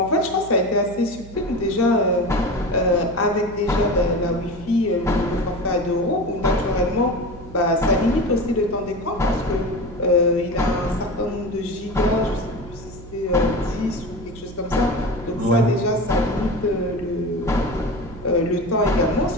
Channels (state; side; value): noise; right; hum, 17 dB below the sound